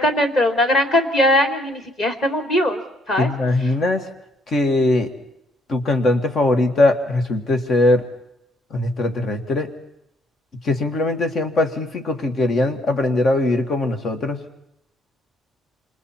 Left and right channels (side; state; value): both; normal; correlation 0.68